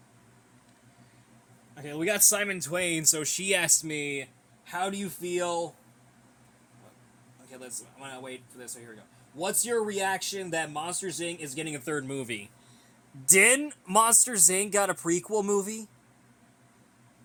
Okay, we got Simon Twain, so she asked me, how do you feel... Okay, I'm gonna wait for this, so here we go. What's your reaction that Monsters, Inc. is getting a third movie? Didn't Monsters, Inc. got a prequel movie?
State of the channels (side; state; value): both; identical; correlation 1.00